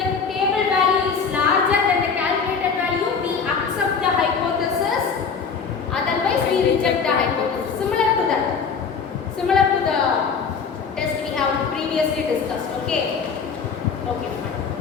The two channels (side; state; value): right; quieter; 5.8 dB